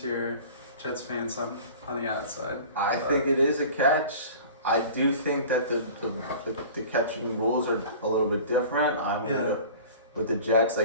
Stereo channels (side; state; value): both; inverted; correlation -0.42